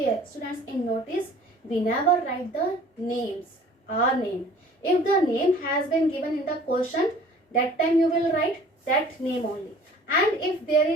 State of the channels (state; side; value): normal; both; correlation 0.50